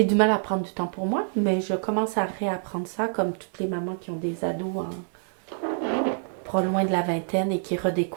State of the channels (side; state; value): left; silent; digital silence